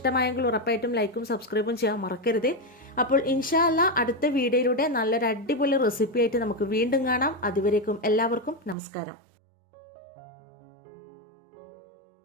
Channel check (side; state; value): left; drops out; at 8.8 s